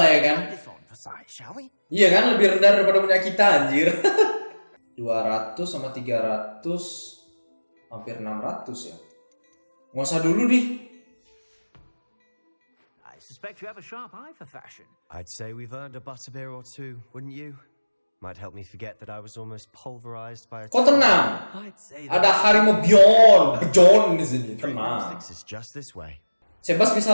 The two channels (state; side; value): inverted; both; correlation -1.00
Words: lah ya kan? This on for size, shall we? Iya kan, lebih rendah daripada punya kita anjir. 200 sama 300 hampir 600 ya. Nggak usah dulu di. I suspect you have a sharp eye for fashion. I'd say we've earned a butterbeer or two, wouldn't you? Might help me forget that I was almost pulverized by a... Kok tenang? I'd say Ada Harimo Bjorn di sini. Tenang. is just this way. Sebas bisa